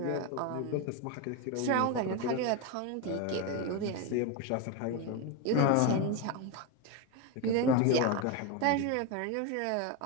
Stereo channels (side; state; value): both; different; correlation 0.03